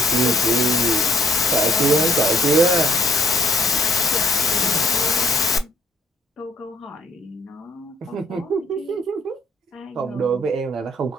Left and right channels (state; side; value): normal; both; correlation 0.64